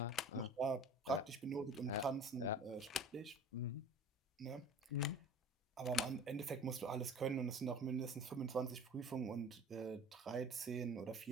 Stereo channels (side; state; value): both; normal; correlation 0.42